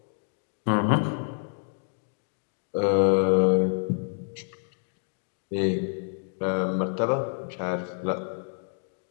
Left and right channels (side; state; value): right; silent; digital silence